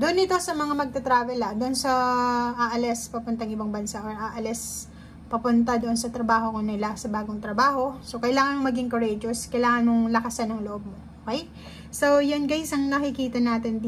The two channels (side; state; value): both; identical; correlation 1.00